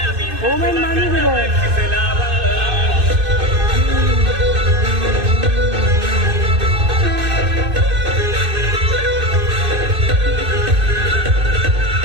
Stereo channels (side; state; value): left; late; 2.6 ms